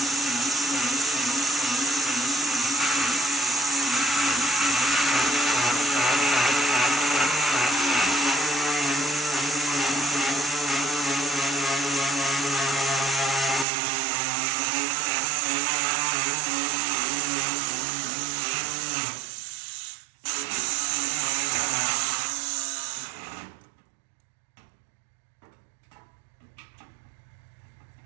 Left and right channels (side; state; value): left; drops out; at 13.7 s